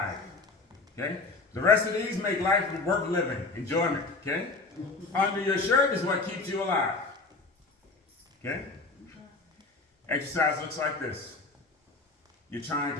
Okay? The rest of these make life worth living, enjoyment. Okay? Under your shirt is what keeps you alive. Okay? Exercise looks like this. You're trying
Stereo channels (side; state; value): right; quieter; 3.6 dB